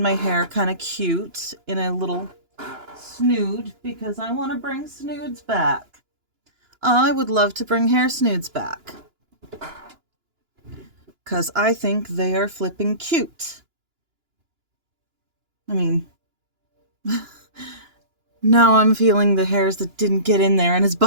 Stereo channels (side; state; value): left; late; 2.9 ms